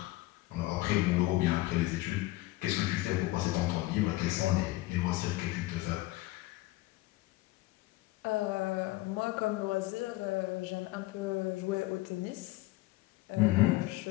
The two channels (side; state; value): right; quieter; 18.9 dB